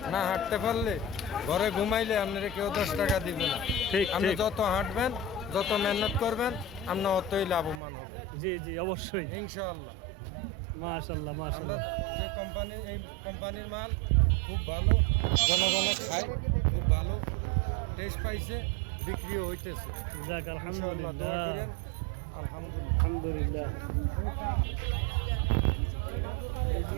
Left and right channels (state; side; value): drops out; left; at 7.8 s